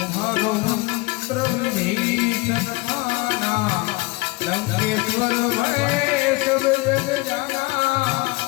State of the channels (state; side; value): quieter; right; 23.6 dB